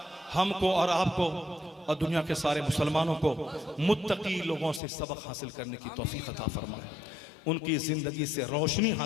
हमको और आपको और दुनिया के सारे मुसलमानों को मुत्तकी लोगों से सबक हासिल करने की तौफीक अता फरमाए, उनकी ज़िंदगी से रोशनी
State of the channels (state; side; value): drops out; right; at 4.8 s